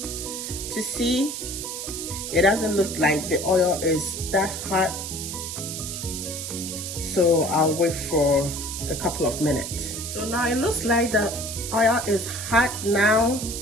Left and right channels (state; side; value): noise; right; hiss, 6 dB below the sound